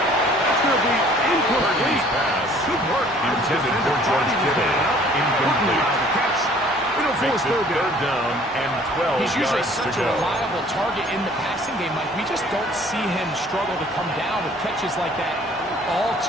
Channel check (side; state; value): both; normal; correlation 0.55